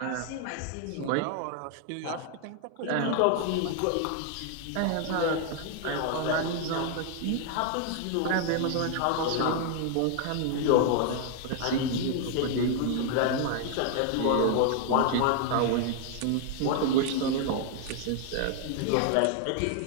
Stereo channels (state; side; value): different; both; correlation 0.00